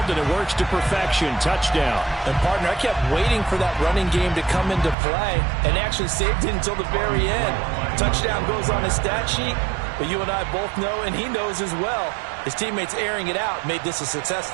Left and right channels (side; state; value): left; drops out; at 5.0 s